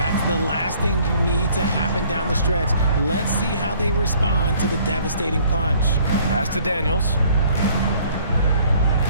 the last thing you need to happen down the stretch. Let's see how they respond to the devastating punch. Pass to Daniels.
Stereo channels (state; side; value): inverted; both; correlation -0.59